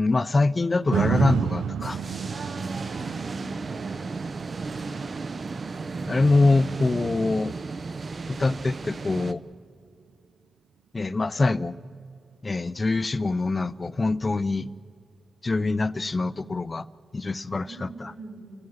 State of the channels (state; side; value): normal; both; correlation 0.93